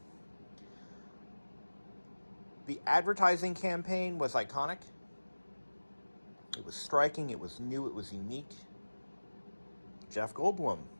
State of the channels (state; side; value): inverted; both; correlation -1.00